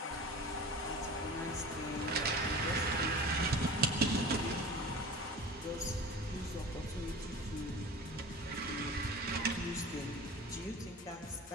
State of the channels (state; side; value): normal; both; correlation 0.37